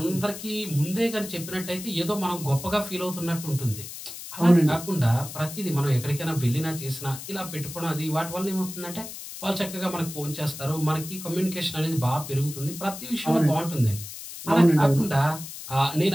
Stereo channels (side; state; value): left; noise; hiss, 11 dB below the sound